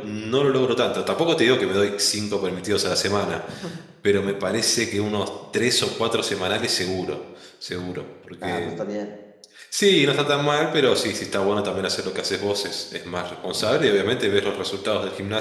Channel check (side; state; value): both; identical; correlation 1.00